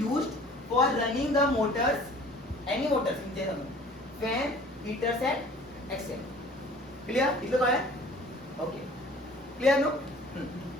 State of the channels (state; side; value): normal; both; correlation 0.49